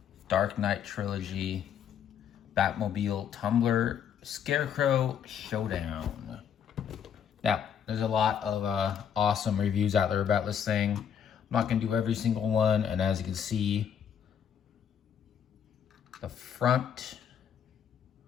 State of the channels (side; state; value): right; quieter; 8.3 dB